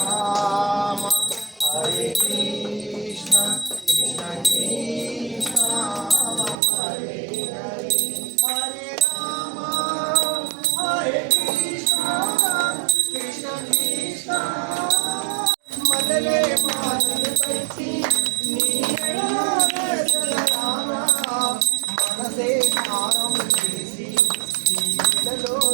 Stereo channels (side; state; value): left; drops out; at 6.6 s